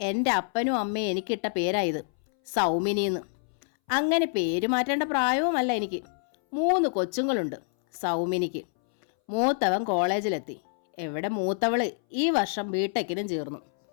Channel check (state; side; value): silent; right; 60 dB below the other